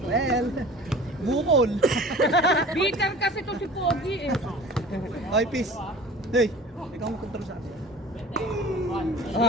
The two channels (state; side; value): normal; both; correlation 0.41